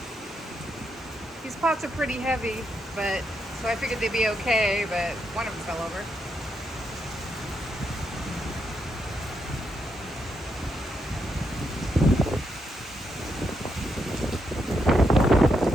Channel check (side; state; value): both; normal; correlation 0.81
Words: These pots are pretty heavy, but so I figured they'd be okay, but one of them fell over.